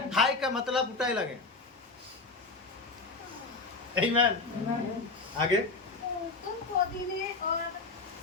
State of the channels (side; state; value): right; quieter; 3.6 dB